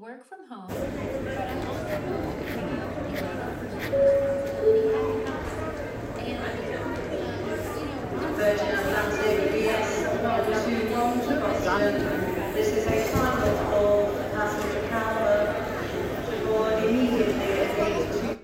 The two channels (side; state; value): both; identical; correlation 1.00